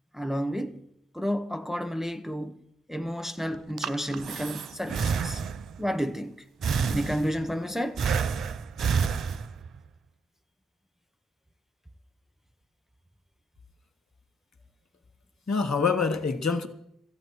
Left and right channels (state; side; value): normal; both; correlation 0.77